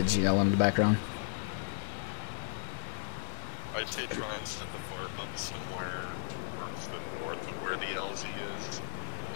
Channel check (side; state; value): right; silent; 54 dB below the other